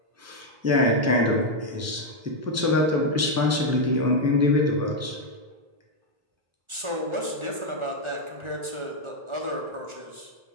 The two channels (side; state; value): left; late; 1.4 ms